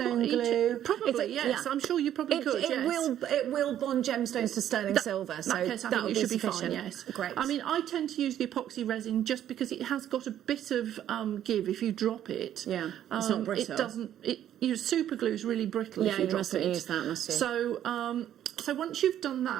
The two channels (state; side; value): quieter; left; 11.1 dB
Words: glue? Probably, yes. I'm sure you probably could, yes. It will bond gemstones to sterling silver, so that case, I that think would it be should be sufficient. fine, yes. Great. I mean, I tend to use the epoxy resin just because it has got a bit of give if you drop it. Yeah, it's not brittle. It doesn't... Your super glue is really brittle if you drop it. Yeah, you must have used that, must you? So... So once you've done